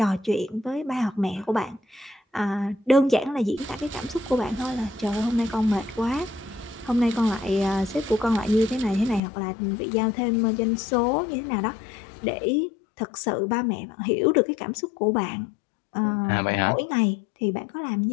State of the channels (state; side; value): drops out; right; at 9.2 s